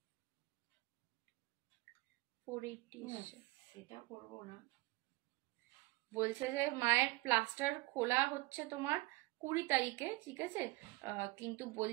480 সেটা করবো না, বলছে যে মায়ের প্লাস্টার খোলা হচ্ছে তোমার 20 তারিখে, ঠিক আছে। কিন্তু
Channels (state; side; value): quieter; left; 21.9 dB